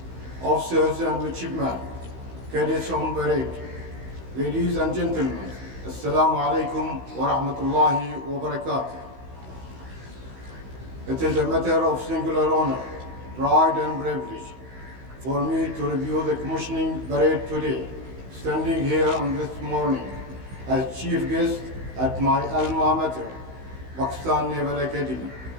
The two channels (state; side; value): late; left; 16 ms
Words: officers and midshipmen, cadets on parade, ladies and gentlemen, Assalamu alaikum wa rahmatullahi wa barakatuh. It is a matter of singular honor, pride and privilege for me to review the commissioning parade today, standing here on this morning as chief guest at my Alma Mater, Pakistan Naval Academy.